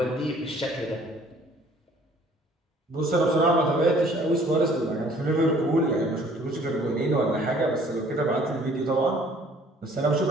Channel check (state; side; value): normal; both; correlation 0.56